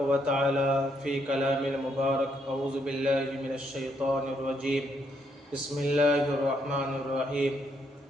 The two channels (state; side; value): normal; both; correlation 0.74